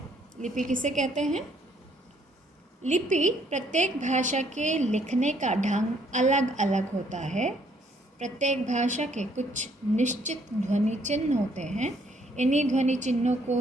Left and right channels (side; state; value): both; normal; correlation 0.67